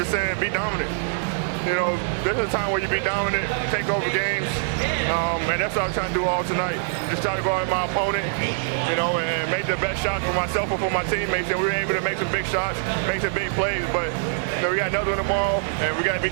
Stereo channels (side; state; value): left; silent; digital silence